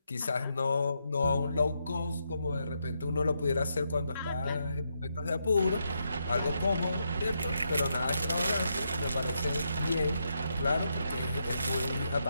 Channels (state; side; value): inverted; both; correlation -0.81